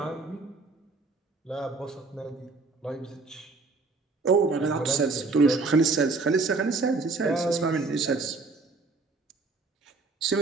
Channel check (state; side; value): quieter; left; 3.9 dB